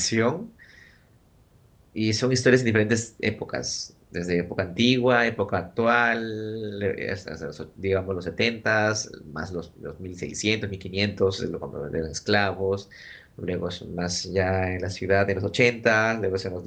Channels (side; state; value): both; identical; correlation 1.00